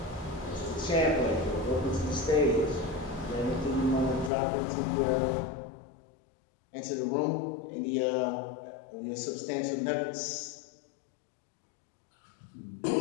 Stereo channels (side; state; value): right; drops out; at 4.3 s